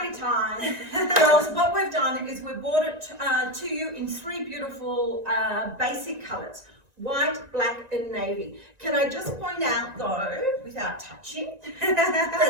time. Girls, what we've done is we've brought it to you in 3 beautiful basic colours. White, black and navy. Can I just point out though, without touching,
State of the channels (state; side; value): late; left; 1.9 ms